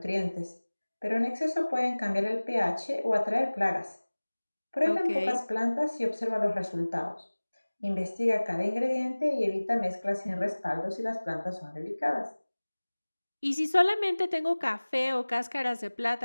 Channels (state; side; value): inverted; both; correlation -1.00